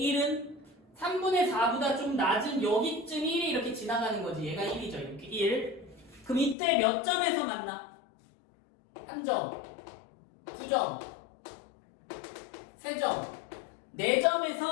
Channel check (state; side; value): drops out; right; at 6.6 s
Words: 1은 3분의 4보다 좀 낮은 여기쯤 1이 이렇게 지나가는 거지. 얘가 1이죠. 이렇게 1. 그럼 이때 몇 점에서 만나? 1점, 2점, 3점,